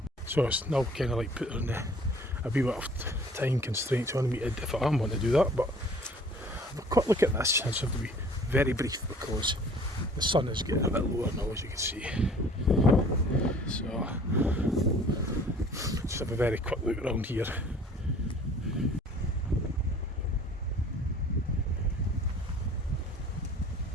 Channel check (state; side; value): normal; both; correlation 0.51